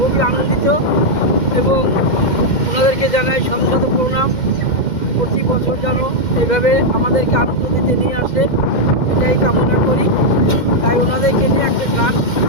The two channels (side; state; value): right; late; 2.1 ms